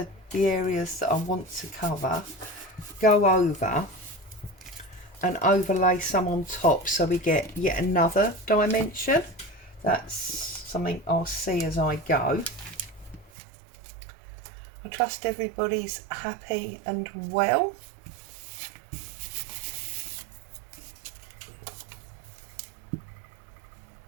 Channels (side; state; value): left; drops out; at 13.3 s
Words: the areas that I want to cover, go over and overlay some on top so we get yet another dimension. That's something I'll see as I go. I trust everybody's happy and well.